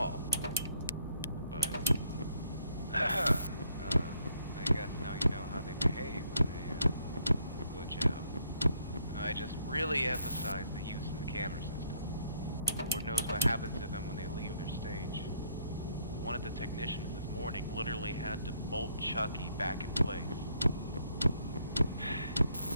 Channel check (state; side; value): inverted; both; correlation -0.69